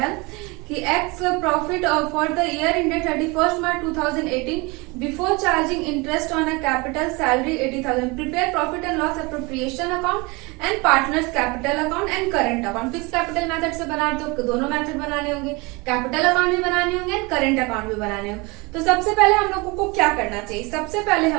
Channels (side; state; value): left; quieter; 26.3 dB